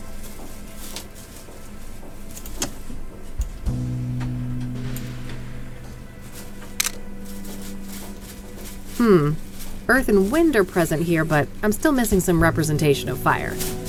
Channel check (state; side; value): identical; both; correlation 1.00